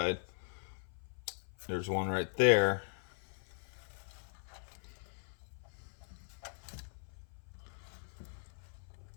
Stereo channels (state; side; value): silent; right; 51 dB below the other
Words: there's one right there.